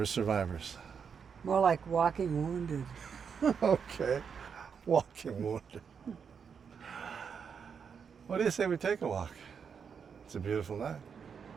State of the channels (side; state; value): left; quieter; 6.6 dB